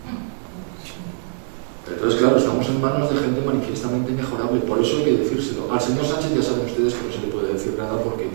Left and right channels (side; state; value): left; silent; digital silence